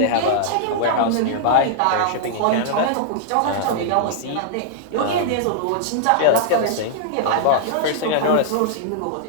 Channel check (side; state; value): both; different; correlation -0.01